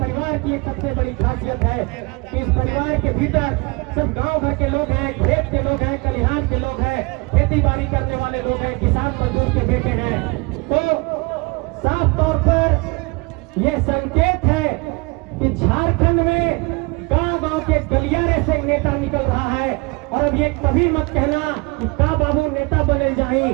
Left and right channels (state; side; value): quieter; left; 27.3 dB